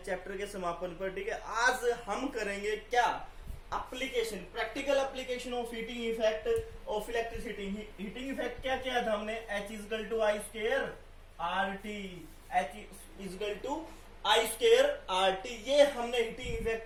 चैप्टर के समापन पर। ठीक है, आज हम करेंगे क्या, application, practical application of heating effect of electricity. Heating effect क्या किया था हमने, H is equal to I square R T, H is equal to I square R T, ये हमने हीटिंग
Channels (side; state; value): both; identical; correlation 1.00